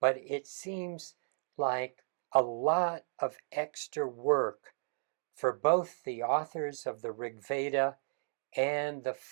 but it seems like a lot of extra work for both the authors of the Rig Veda and the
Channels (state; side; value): silent; left; digital silence